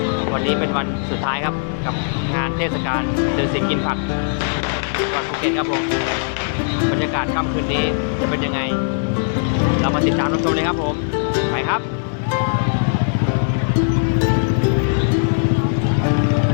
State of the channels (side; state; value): right; silent; digital silence